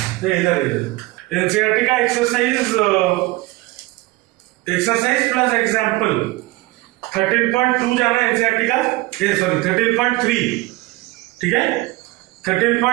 इधर एनसीईआरटी का एक्सरसाइज प्लस एग्जाम्पल 13.2 जाना एनसीईआरटी का, सॉरी 13.3, ठीक है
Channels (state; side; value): quieter; left; 20.6 dB